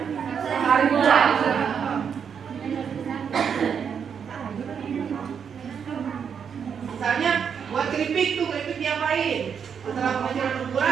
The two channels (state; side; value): quieter; left; 7.2 dB